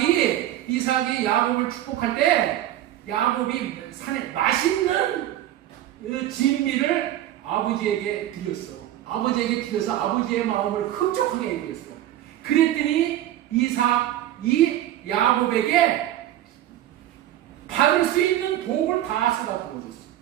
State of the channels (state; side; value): quieter; left; 13.0 dB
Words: 이삭이 야곱을 축복할 때 야곱이 산에 맛있는 진미를 아버지에게 드렸어. 아버지에게 드려서 아버지의 마음을 흡족하게 해드렸어. 그랬더니 이삭이 야곱에게 받을 수 있는 복을 다 쏟아 부어줬어.